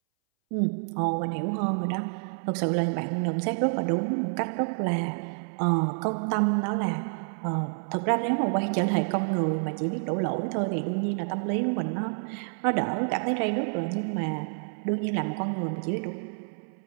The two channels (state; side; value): silent; left; 59 dB below the other